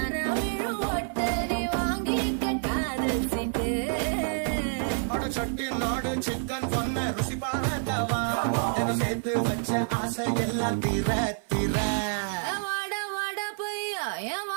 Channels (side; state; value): left; silent; 59 dB below the other